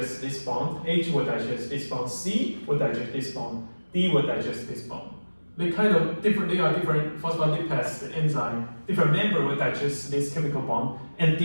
this bond, H will digest this bond, C will digest this bond, D will digest this bond. They kind of different. They are different phospholipase enzyme. Different member will digest this chemical bond and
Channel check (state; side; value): inverted; both; correlation -1.00